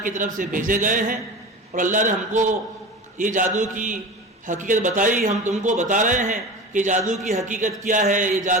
کی طرف سے بھیجے گئے ہیں اور اللہ نے ہم کو یہ جادو کی حقیقت بتائی، ہم تم کو بتا رہے ہیں کہ جادو کی حقیقت کیا ہے، یہ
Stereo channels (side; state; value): both; normal; correlation 0.31